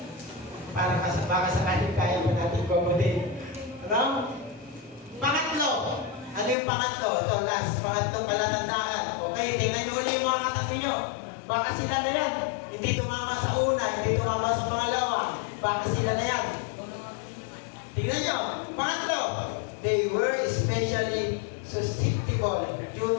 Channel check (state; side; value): drops out; right; at 6.6 s